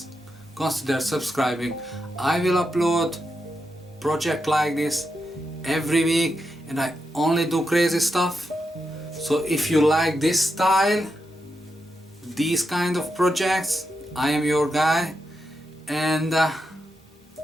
consider subscribing. I will upload project like this every week, and I only do crazy stuff. So if you like this style, these kind of projects, I am your guy. And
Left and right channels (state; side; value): normal; both; correlation 0.86